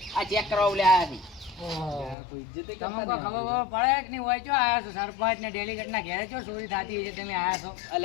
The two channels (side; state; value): right; drops out; at 2.1 s